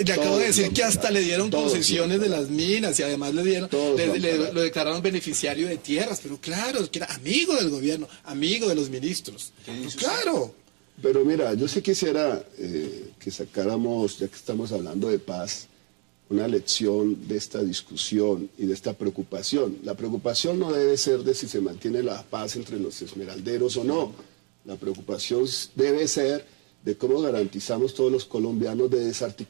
le acabo de decir que hasta le dieron concesiones de las minas y además lo declararon beneficiario de tierras, pero claro, que era amigo del gobierno, amigo de los ministros. Claro. Pero mira, yo sí quisiera que sacáramos, ya que estamos hablando de paz, una lección de esta discusión y de esta preocupación. La preocupación no debe ser de si se mantiene la paz entre los esmeralderos o no. La preocupación debe ser de cómo garantizamos todos los colombianos, de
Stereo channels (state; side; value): quieter; left; 32.3 dB